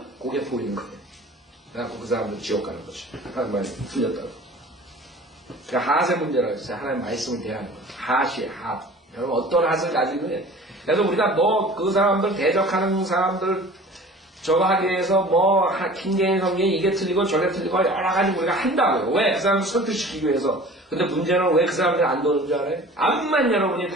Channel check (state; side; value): normal; both; correlation 0.43